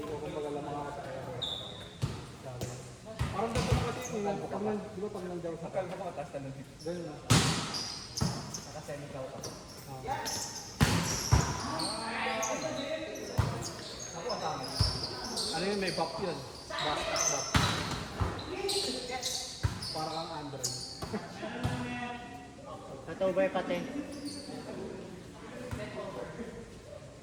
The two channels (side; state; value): both; identical; correlation 1.00